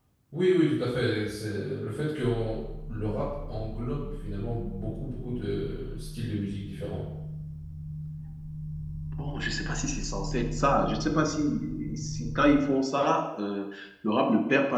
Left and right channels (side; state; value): both; identical; correlation 1.00